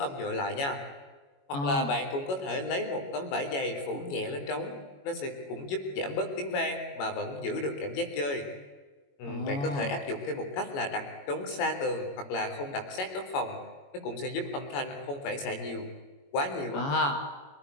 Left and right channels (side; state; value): right; late; 21 ms